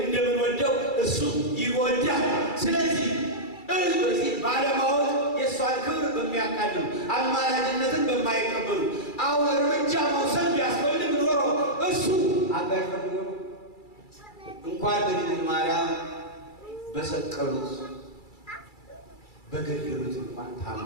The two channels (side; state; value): right; late; 2.3 ms